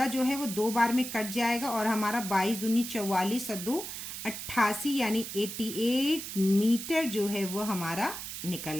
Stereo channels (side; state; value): right; noise; hiss, 8 dB below the sound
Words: जो है वो 2 बार में कट जाएगा और हमारा 22 दूनी 44 और 2 88 यानी 88 मीटर जो है वो हमारा निकल